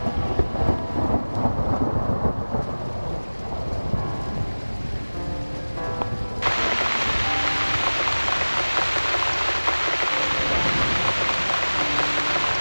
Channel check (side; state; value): both; inverted; correlation -1.00